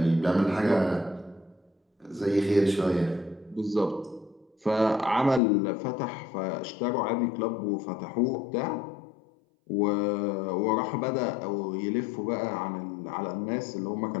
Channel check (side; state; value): right; drops out; at 5.4 s